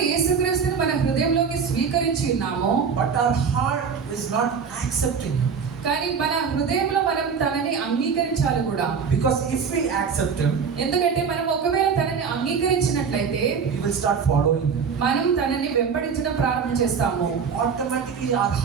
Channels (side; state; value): left; quieter; 6.1 dB